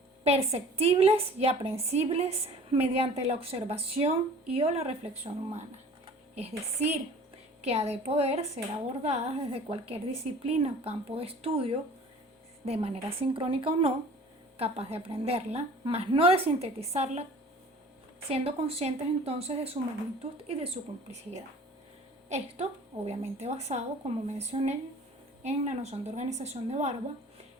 perceptibles y aprehensibles mediante la observación y o la reflexión humana. Es decir, que ha de poder ser abordadas desde cualquier disciplina o campo de estudio, de manera sincrónica o no, capaz de aprenderla, mas no de sintetizarla, siendo conscientes entonces de su magnitud y de su complejidad. Esto, obviamente basado, como mencioné, en la noción de organización de Barba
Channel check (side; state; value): both; normal; correlation 0.46